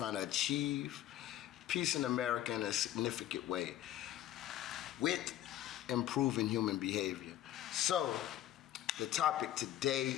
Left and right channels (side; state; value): right; quieter; 12.8 dB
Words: achieve peace in America in a significant way with improving human behavior. So, the topic today